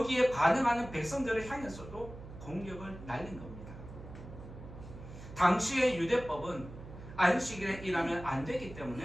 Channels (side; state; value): right; noise; hum, 14 dB below the sound